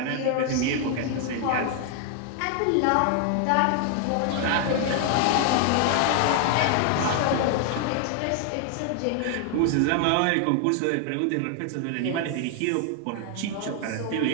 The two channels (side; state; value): both; different; correlation 0.00